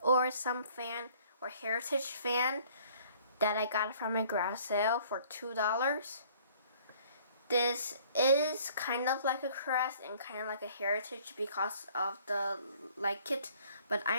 some fan or heritage fan that I got from a garage sale for $2. This is kind of like a Crest and kind of like a heritage because of the like kit, but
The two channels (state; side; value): inverted; both; correlation -0.57